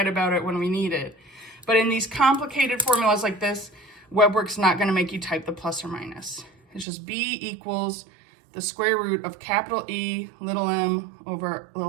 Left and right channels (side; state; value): left; drops out; at 6.9 s